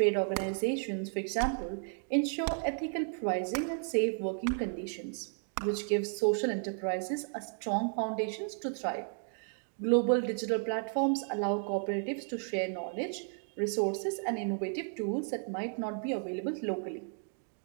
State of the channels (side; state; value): left; silent; 55 dB below the other